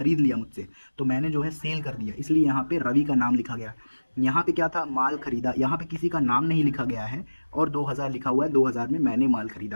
लिया मुझसे, तो मैंने जो है सेल कर दिया, इसलिए यहाँ पे रवि का नाम लिखा गया। यहाँ पे क्या था, माल खरीदा, यहाँ पे किसी का नाम नहीं लिखा गया है और 2,000 लिखा हुआ है, 2,000 में मैंने माल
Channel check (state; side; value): inverted; both; correlation -1.00